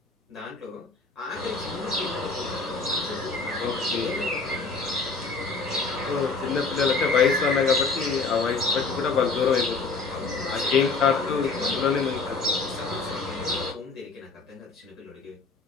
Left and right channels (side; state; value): right; quieter; 4.2 dB